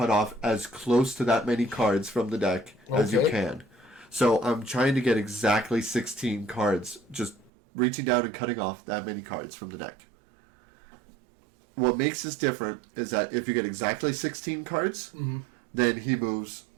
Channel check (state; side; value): drops out; left; at 7.5 s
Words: off as close to that many cards from the deck as you can. So I'm trying to get exactly 16 cards, just reaching down and cutting off that many cards from the deck. What makes this different is that if you get exactly 16 cards, then he moves